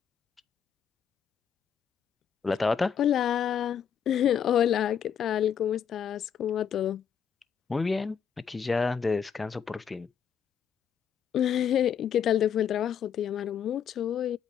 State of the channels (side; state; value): right; quieter; 7.9 dB